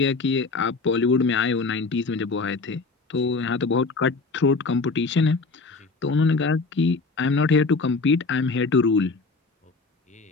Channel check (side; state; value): right; quieter; 4.0 dB